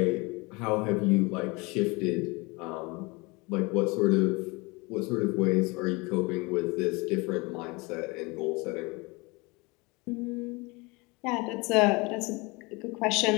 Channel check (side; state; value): right; quieter; 26.2 dB